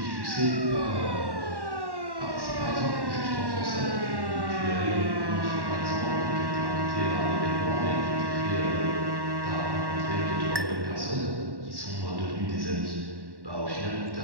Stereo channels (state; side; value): late; left; 1.1 ms